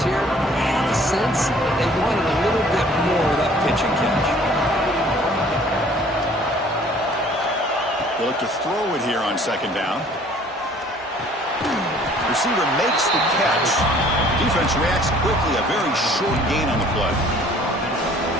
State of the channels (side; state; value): both; normal; correlation 0.54